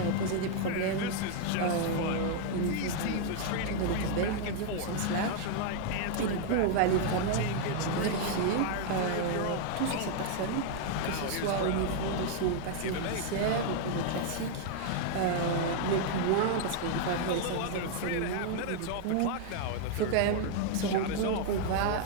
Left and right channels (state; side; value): different; both; correlation 0.00